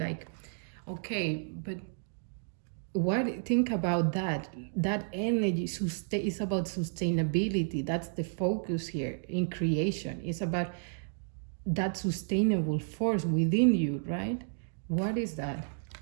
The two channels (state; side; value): silent; left; digital silence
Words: okay, but what, think about that energy is about sustainability. That's the focus here in creation. It's about that sustainable force within you, right? What is that?